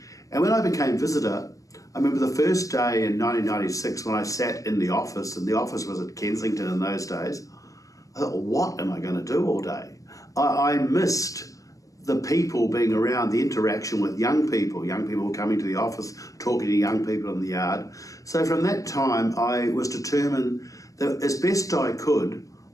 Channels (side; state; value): right; late; 0.16 ms